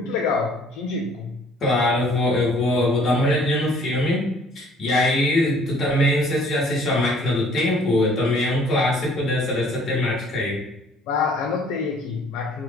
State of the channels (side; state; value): both; normal; correlation 0.57